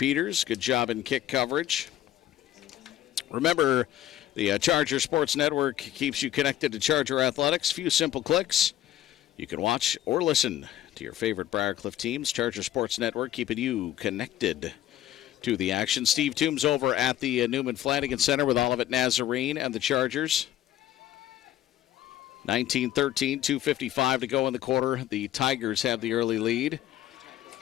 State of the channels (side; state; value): right; quieter; 12.5 dB